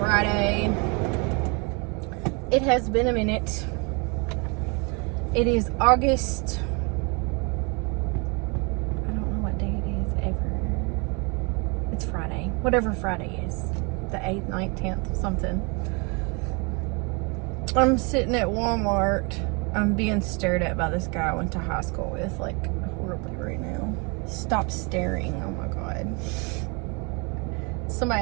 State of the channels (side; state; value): left; quieter; 31.8 dB